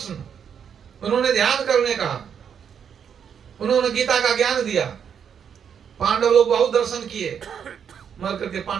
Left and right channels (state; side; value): quieter; left; 7.8 dB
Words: उन्होंने ध्यान करने कहा, उन्होंने गीता का ज्ञान दिया। पांडव लोग बहुत दर्शन किए, मर करके